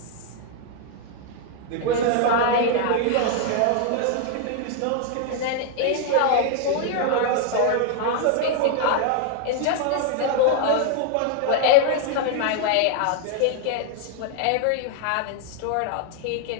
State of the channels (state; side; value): different; both; correlation 0.00